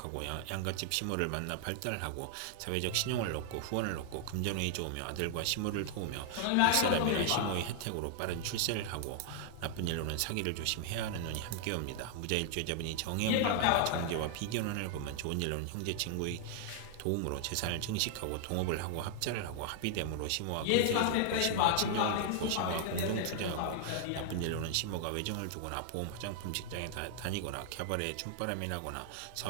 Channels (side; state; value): both; different; correlation 0.00